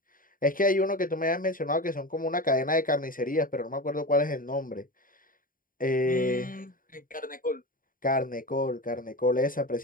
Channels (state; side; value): late; right; 0.40 ms